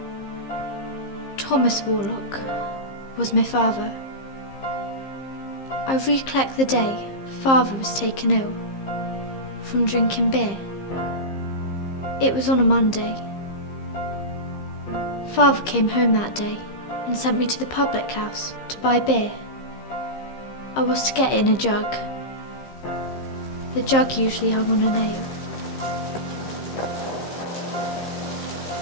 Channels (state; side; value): late; right; 15 ms